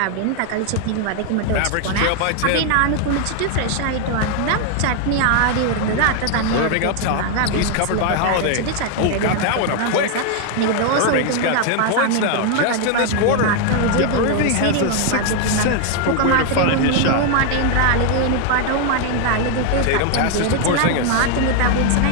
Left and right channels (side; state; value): both; different; correlation 0.00